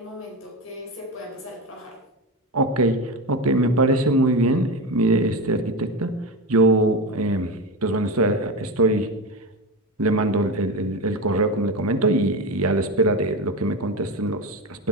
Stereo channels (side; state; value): both; normal; correlation 0.20